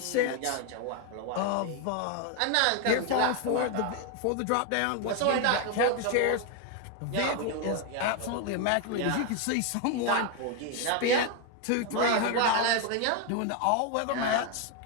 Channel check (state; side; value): different; both; correlation 0.01